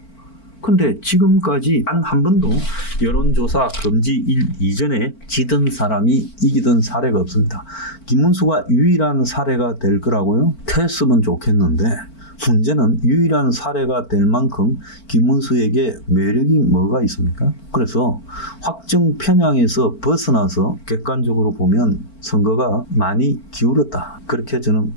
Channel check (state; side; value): late; right; 4.5 ms